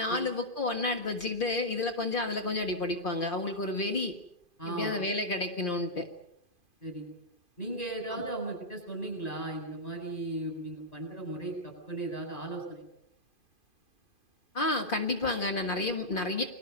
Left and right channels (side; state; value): right; late; 2.5 ms